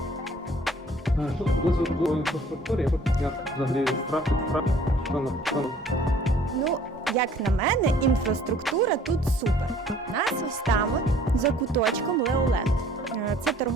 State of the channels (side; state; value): both; normal; correlation 0.55